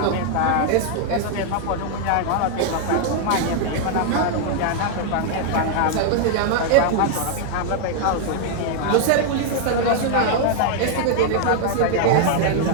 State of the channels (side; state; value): both; different; correlation 0.00